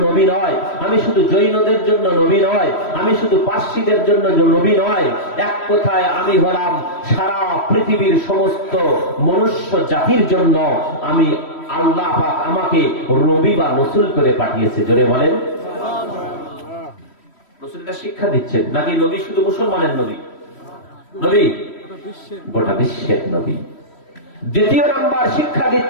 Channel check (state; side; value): late; right; 3.1 ms